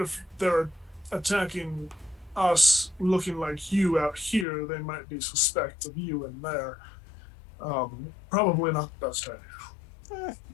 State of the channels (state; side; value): drops out; right; at 4.5 s